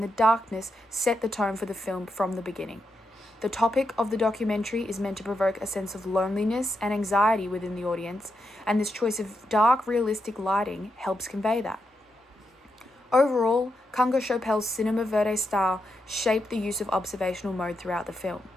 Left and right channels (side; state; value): both; normal; correlation 0.84